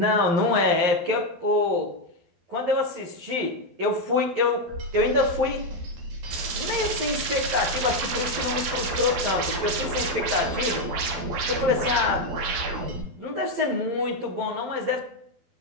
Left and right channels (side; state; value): left; late; 12 ms